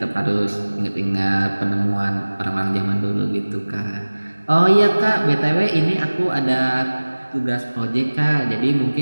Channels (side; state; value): both; inverted; correlation -1.00